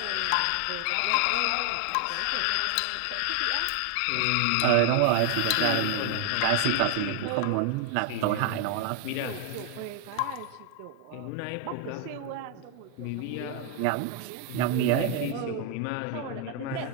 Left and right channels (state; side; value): different; both; correlation 0.00